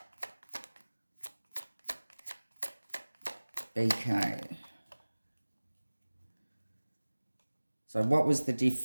BK. So what was the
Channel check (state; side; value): inverted; both; correlation -1.00